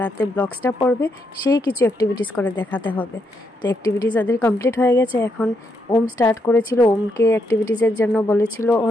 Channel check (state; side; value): normal; both; correlation 0.79